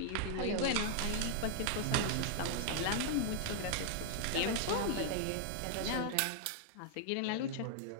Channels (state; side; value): different; both; correlation -0.01